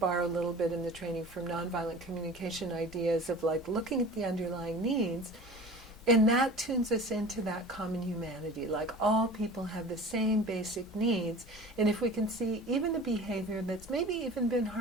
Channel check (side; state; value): both; normal; correlation 0.39